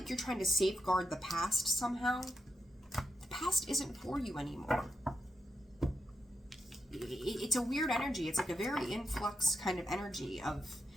you're trying to safeguard the past somehow. The past isn't for you anymore. It's a weird energy. It's like a very influx kind of energy of,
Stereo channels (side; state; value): both; normal; correlation 0.86